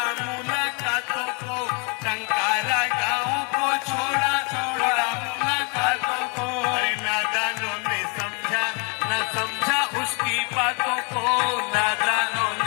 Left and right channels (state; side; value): quieter; right; 34.3 dB